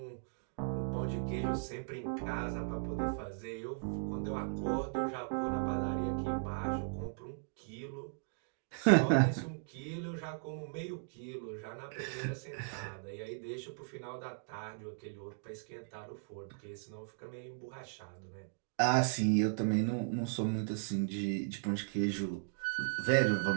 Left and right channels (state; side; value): silent; left; digital silence